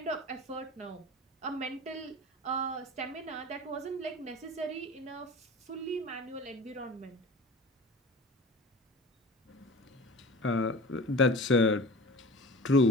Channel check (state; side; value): normal; both; correlation 0.37